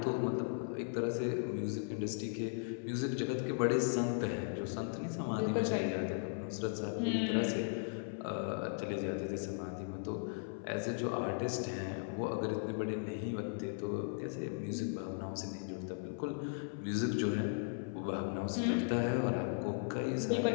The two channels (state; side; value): silent; right; 53 dB below the other